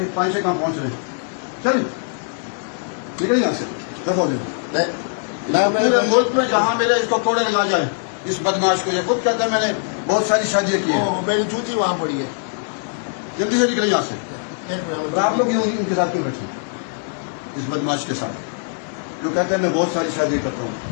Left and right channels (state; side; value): silent; right; 65 dB below the other